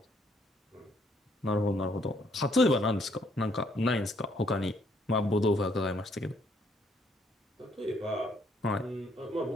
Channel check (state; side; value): normal; both; correlation 0.68